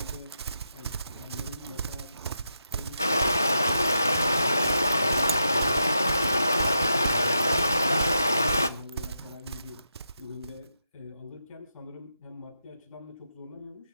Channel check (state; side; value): inverted; both; correlation -0.84